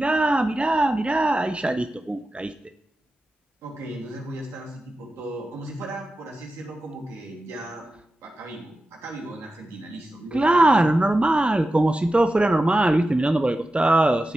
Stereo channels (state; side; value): normal; both; correlation 0.92